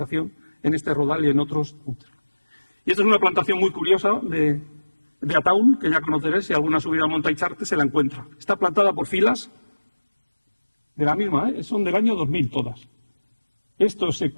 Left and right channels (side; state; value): both; inverted; correlation -1.00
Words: en este rodal y en otros. Y esta es una plantación muy curiosa de Ataun, que ya conoceréis. Si alguna subida a Monta Icharte se la encuentra. Está plantada por filas de la misma, son del año 2000 todas. Esto es